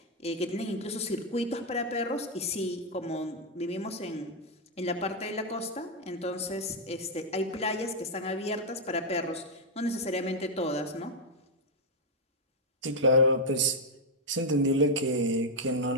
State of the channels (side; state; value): both; normal; correlation 0.00